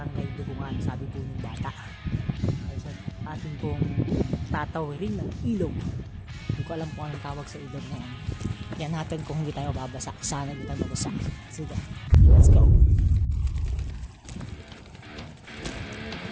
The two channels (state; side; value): identical; both; correlation 1.00